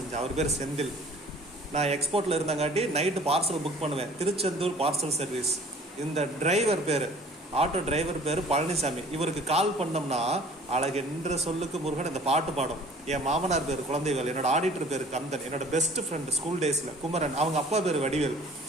அவர் பேர் செந்தில். நான் எக்ஸ்போர்ட்டில் இருந்தங்காட்டி நைட்டு பார்சல் புக் பண்ணுவேன், திருச்செந்தூர் பார்சல் சர்வீஸ். இந்த டிரைவர் பேர், ஆட்டோ டிரைவர் பேர் பழனிசாமி. இவருக்கு கால் பண்ணோம்னா அழகென்ற சொல்லுக்கு முருகன் இந்த பாட்டு பாடும். என் மாமனார் பேர் குழந்தைகள், என்னோட ஆடிட்டர் பேர் கந்தன், என்னோட பெஸ்ட் ஃப்ரெண்டு ஸ்கூல் டேஸில் குமரன், அவங்க அப்பா பேர் வடிவேல்,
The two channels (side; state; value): both; normal; correlation 0.50